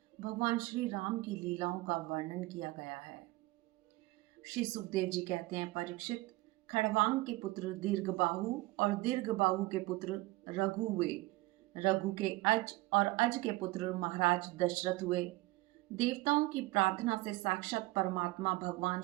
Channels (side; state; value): left; quieter; 20.4 dB